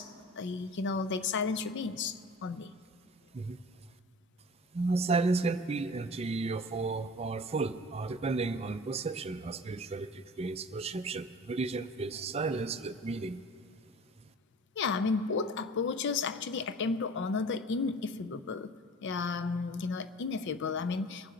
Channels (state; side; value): normal; both; correlation 0.41